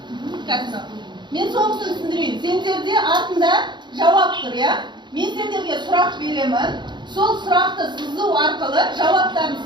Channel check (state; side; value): late; left; 0.22 ms